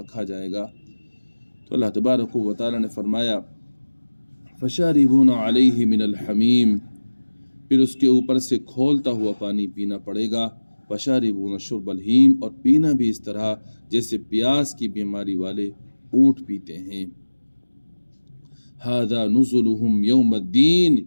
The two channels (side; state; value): both; inverted; correlation -1.00